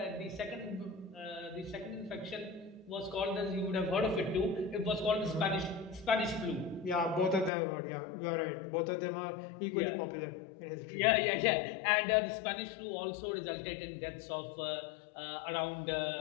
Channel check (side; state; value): right; drops out; at 7.5 s